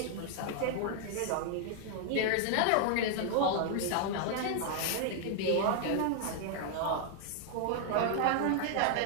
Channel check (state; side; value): different; both; correlation 0.00